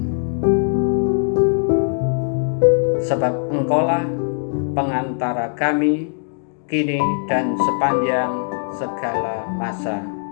Sebab Engkaulah pengantara kami kini dan sepanjang segala masa.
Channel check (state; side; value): silent; right; digital silence